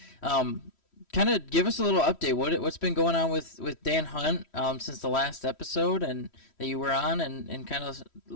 Kind of give us a little update. What's been going on with Dan Hunt since the last episode and that you were on, and kind of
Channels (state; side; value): late; right; 3.1 ms